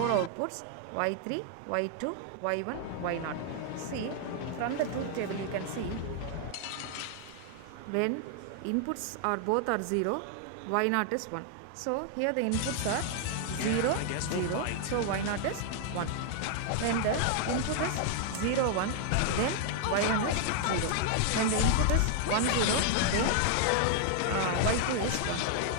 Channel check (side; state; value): both; different; correlation 0.00